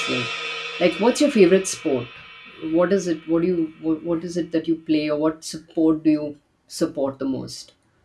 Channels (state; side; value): identical; both; correlation 1.00